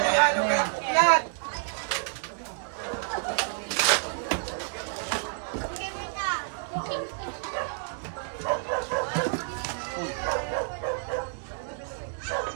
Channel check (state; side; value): silent; left; 59 dB below the other